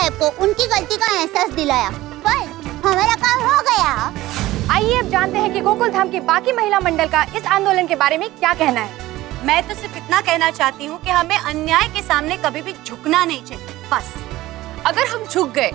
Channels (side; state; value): left; quieter; 16.9 dB